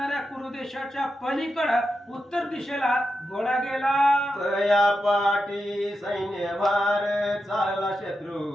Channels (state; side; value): normal; both; correlation 0.88